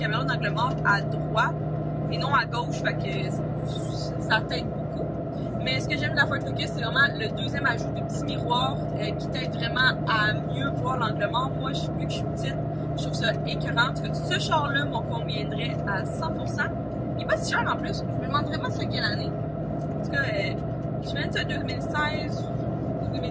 d'angle mort à droite et non à gauche, fait que ça t'aide beaucoup. Mais ce que j'aime de la Ford Focus, c'est vraiment le deuxième ajout de petit miroir qui t'aide vraiment à mieux voir l'angle mort. Moi, vu que je suis petite, je trouve ça écœurant. En tout cas, ce char-là m'en conviendrait à 100%. Il est pas si cher en plus. Je me demande vraiment c'est quelle année. En tout cas, je me dis 2016,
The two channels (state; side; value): identical; both; correlation 1.00